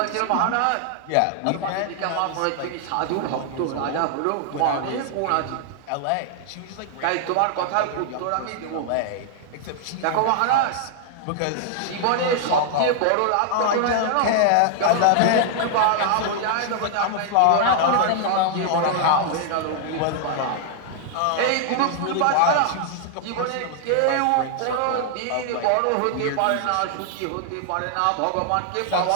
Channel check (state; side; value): different; both; correlation 0.00